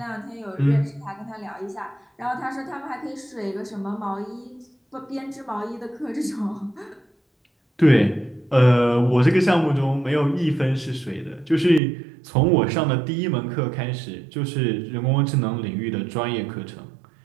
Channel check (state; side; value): drops out; left; at 11.8 s